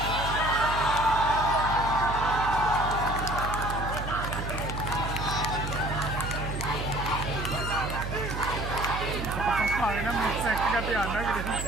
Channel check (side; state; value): right; noise; hum, 5 dB below the sound